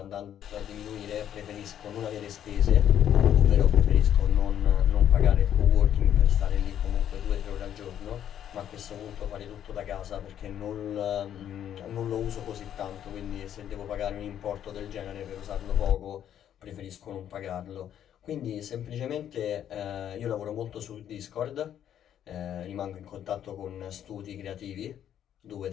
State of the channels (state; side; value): quieter; right; 10.1 dB